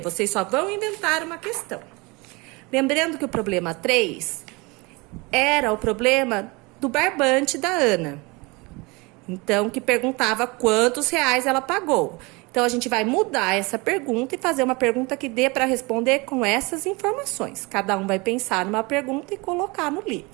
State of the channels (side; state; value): left; quieter; 25.9 dB